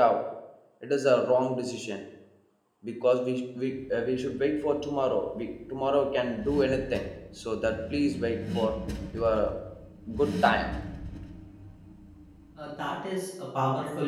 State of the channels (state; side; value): identical; both; correlation 1.00